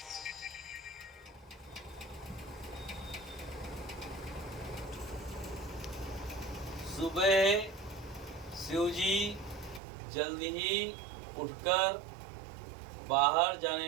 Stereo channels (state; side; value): drops out; left; at 9.8 s